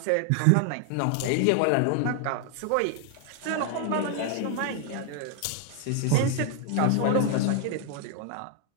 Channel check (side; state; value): both; different; correlation 0.00